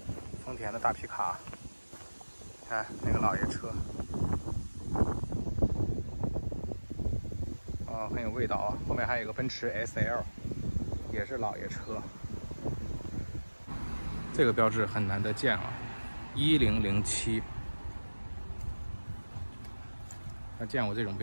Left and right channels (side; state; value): both; inverted; correlation -1.00